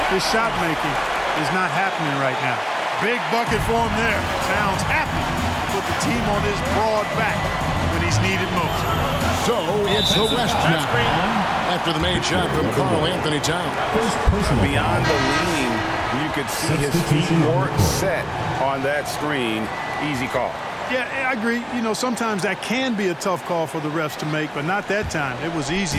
his shot making is not happening right now. Big bucket for him there. Towns happy to put the team on his broad back when he's needed most. So it's the West now after the made shot from Karl Anthony Towns. Beyond the lean, you could see his feet more set on that screen. Easy call. Yeah, I agree. You know, sometimes that can be a tough call for the refs to make, but not that time. It was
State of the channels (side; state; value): both; identical; correlation 1.00